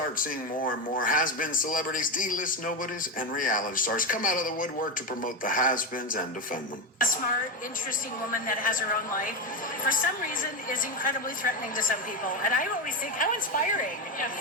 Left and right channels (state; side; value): normal; both; correlation 0.14